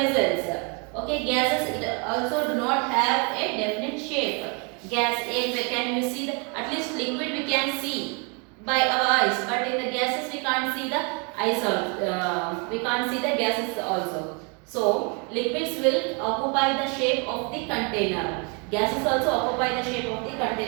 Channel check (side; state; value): left; quieter; 34.3 dB